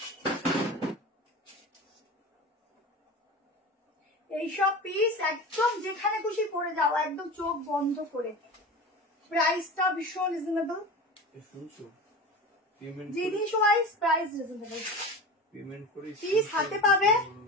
এইসব পিস একদম যেখানে খুশি পরে যাও, একদম চোখ বন্ধ করে। প্রাইসটা ভীষণ রিজনেবল, শুনছো? পেমেন্ট জিনিস ওয়াইজ প্রাইস রিজনেবল। পেমেন্ট করে পিস হাতে পাবে,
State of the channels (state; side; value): normal; both; correlation 0.32